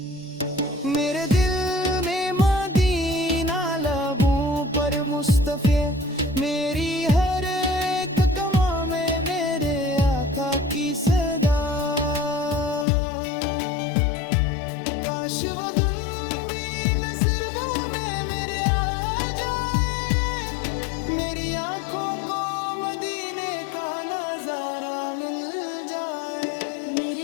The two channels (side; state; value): right; drops out; at 12.9 s